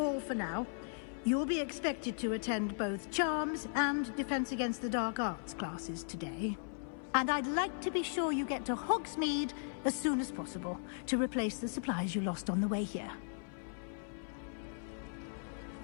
for now. You'll be expected to attend both Charms and Defense Against the Dark Arts classes today. And I'd like to be sure you get to Hogsmeade as soon as possible to replace the supplies you lost on the way here.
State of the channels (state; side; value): silent; right; 53 dB below the other